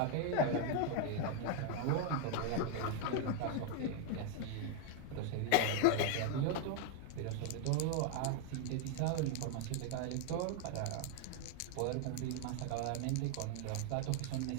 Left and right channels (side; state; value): both; different; correlation 0.00